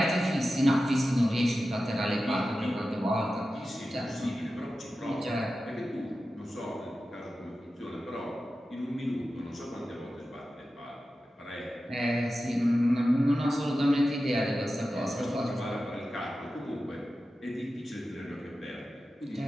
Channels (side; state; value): both; normal; correlation 0.93